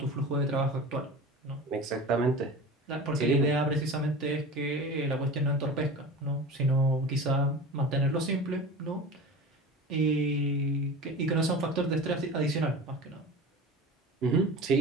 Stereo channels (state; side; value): normal; both; correlation 0.34